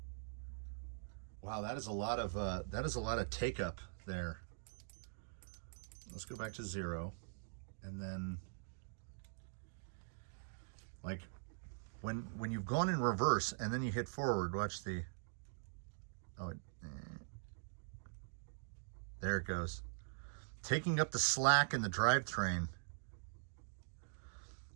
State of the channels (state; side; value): silent; left; digital silence